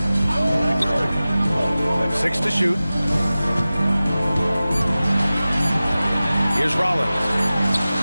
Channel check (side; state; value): both; inverted; correlation -0.97